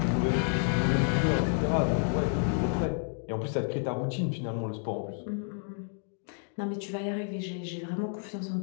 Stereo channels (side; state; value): right; silent; 58 dB below the other